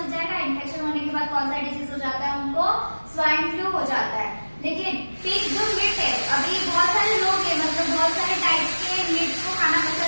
जाएगा। इन्फेक्शन होने के बाद कौन सा डिजीज हो जाता है, उनको स्वाइन फ्लू हो जाता है। लेकिन पिग जो मीट है, अभी बहुत सारे लोग हैं मतलब बहुत सारे टाइप्स के मीट को खाना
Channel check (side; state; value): both; inverted; correlation -1.00